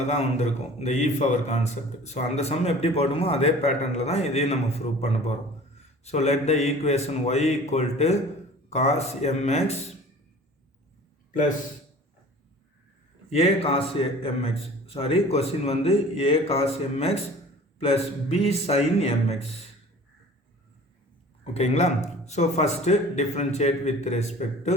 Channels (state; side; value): normal; both; correlation 0.44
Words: தான் வந்திருக்கும், இந்த e power கான்செப்ட். ஸோ அந்த சம் எப்படி போடுமோ அதே பேட்டர்னில் தான் இதையும் நம்ம ப்ரூவ் பண்ண போகிறோம். So let the equation y equal to cos mx plus a cos mx. Sorry, question வந்து a cos mx plus b sin mx. ஓகேங்களா? So first differentiate with respect to